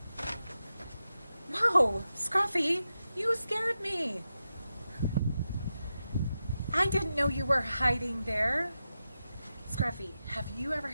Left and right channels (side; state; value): both; inverted; correlation -0.90